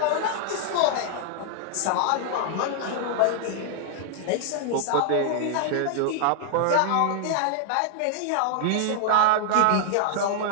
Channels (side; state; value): both; different; correlation -0.01